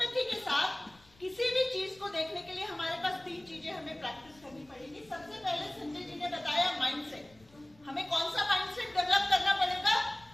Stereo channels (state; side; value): noise; left; rumble, 28 dB below the sound